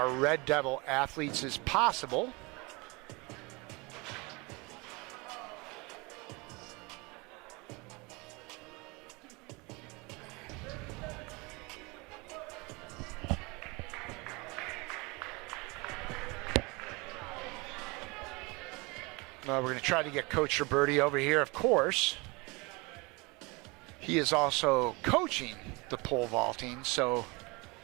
Red Devil athletes as possible. We're going to try to get Coach Roberti over here, of course. He is also coaching the pole vaulting, so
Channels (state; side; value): quieter; left; 26.7 dB